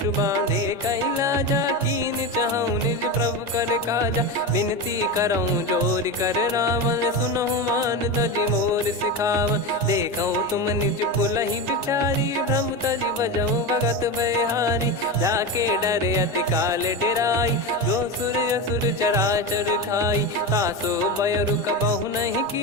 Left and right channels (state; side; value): normal; both; correlation 0.19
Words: बांधे कैलाजा, कीन चाहूँ निज प्रभु कर काजा। विनती करऊँ जोर कर रावण, सुनहु मान तजि मोर सिखावन। देखऊँ तुम निज पुलहि बिचारी, भ्रम तजि बजऊँ भगत बहारी। जाके डरे अति काल डेराई, जो सुर असुर चराचर खाई। तासो बयरु कबहु नहीं